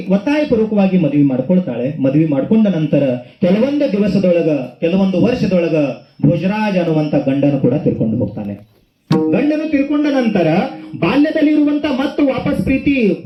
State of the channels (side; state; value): both; identical; correlation 1.00